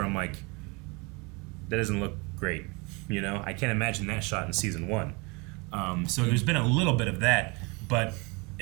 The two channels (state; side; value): quieter; left; 28.8 dB